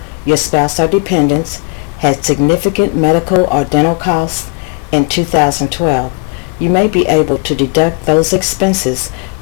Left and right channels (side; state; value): right; quieter; 35.0 dB